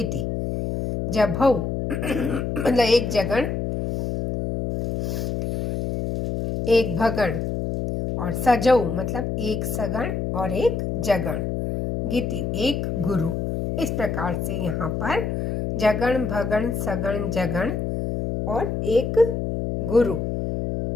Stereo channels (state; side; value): noise; left; hum, 1 dB below the sound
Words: जभौ मतलब एक जगण एक भगण और सजौ मतलब एक सगण और एक जगण, गीति एक गुरु। इस प्रकार से यहाँ पर जगण भगण सगण जगण और एक गुरु